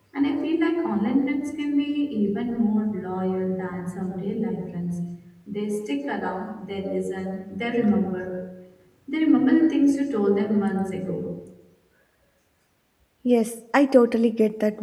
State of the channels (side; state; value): both; identical; correlation 1.00